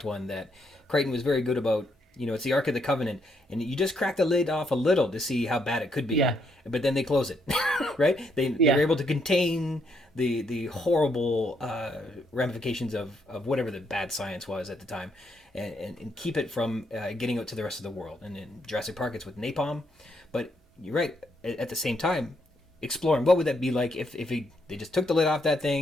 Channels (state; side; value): normal; both; correlation 0.75